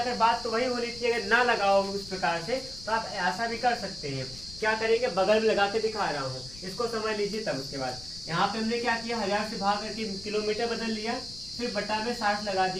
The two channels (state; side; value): noise; left; rumble, 17 dB below the sound